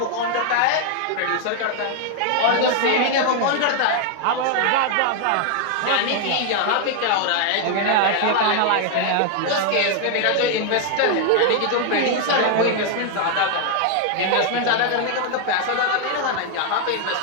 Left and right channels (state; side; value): different; both; correlation 0.00